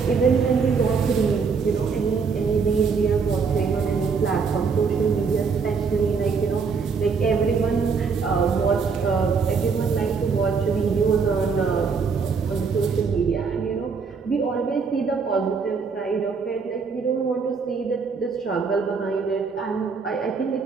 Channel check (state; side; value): quieter; left; 5.3 dB